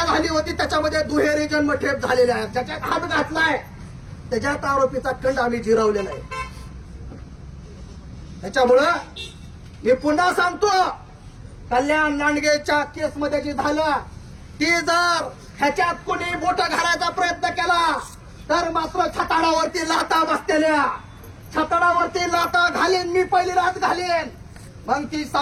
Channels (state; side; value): identical; both; correlation 1.00